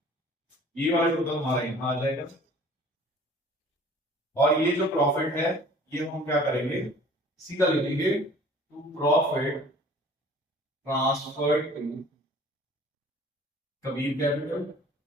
ये वाला टोटल हमारा यहाँ आ जाएगा, और ये जो प्रॉफिट है ये हम क्या करेंगे सीधा लिखेंगे to profit transfer to Kabir capital,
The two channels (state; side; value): normal; both; correlation 0.49